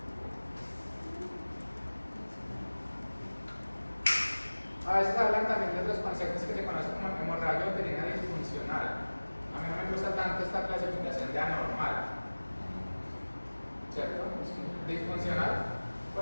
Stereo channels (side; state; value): both; inverted; correlation -1.00